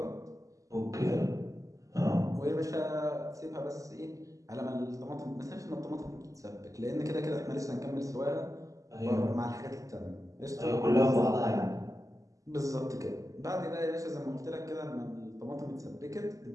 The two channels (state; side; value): late; left; 0.16 ms